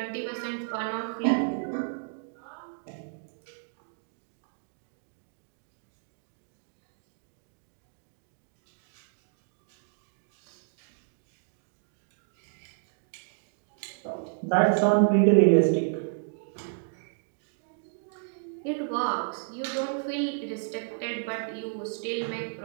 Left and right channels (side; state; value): left; silent; digital silence